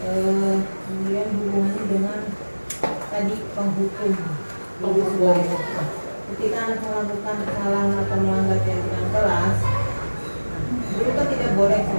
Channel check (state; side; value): inverted; both; correlation -1.00